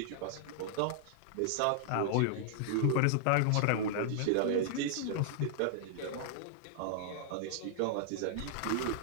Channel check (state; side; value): different; both; correlation -0.01